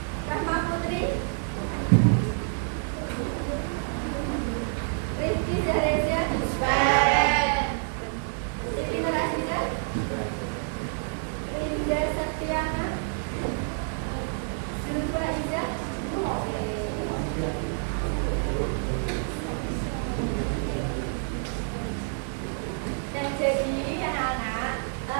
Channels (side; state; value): left; silent; 59 dB below the other